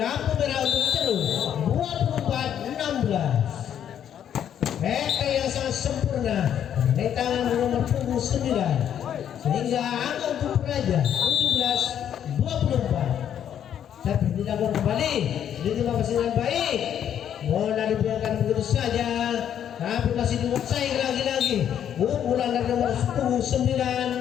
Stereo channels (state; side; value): quieter; right; 9.6 dB